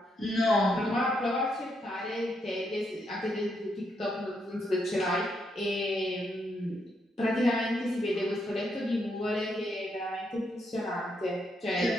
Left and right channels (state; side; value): normal; both; correlation 0.78